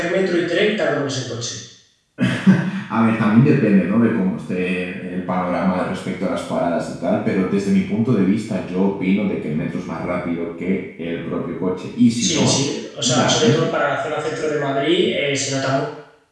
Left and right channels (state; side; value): identical; both; correlation 1.00